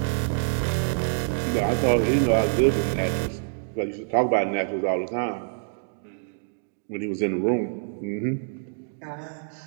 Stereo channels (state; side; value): silent; left; digital silence